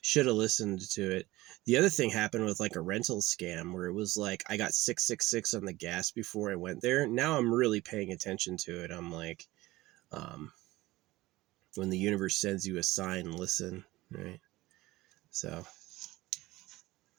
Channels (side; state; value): left; quieter; 18.6 dB